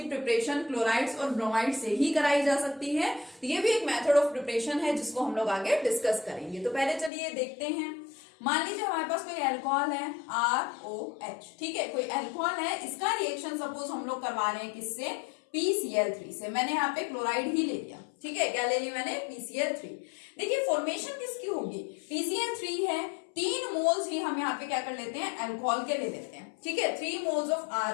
प्रिपरेशन क्लोराइड्स और ब्रोमाइड्स से ही कराई जा सकती है। तो ये भी एक मेथड ऑफ प्रिपरेशन है जिसको हम लोग आगे डिस्कस करेंगे। तो पहले चलिए देखते हैं। मान लीजिए हमारे पास कोई अल्कोहल है ROH, ठीक है, कोई अल्कोहल है, इसका रिएक्शन सपोज हम लोग करवा रहे हैं किससे, PCl3 से। मैंने यहाँ पे क्लोराइड ही ले लिया, ठीक है, क्या ले लिया मैंने, PCl3। देखिए फॉर्मेशन किसकी होगी, PCl3 है, 3 मोल्स ही हम यहाँ पे क्या कर लेते हैं, अल्कोहल के ले लेते हैं, ठीक है, 3 moles of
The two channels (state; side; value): drops out; right; at 7.1 s